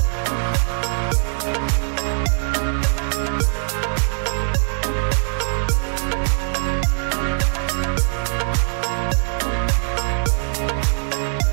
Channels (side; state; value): left; silent; 56 dB below the other